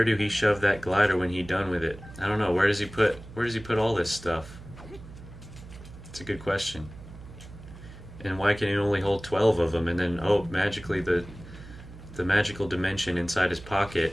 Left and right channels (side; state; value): right; noise; hum, 16 dB below the sound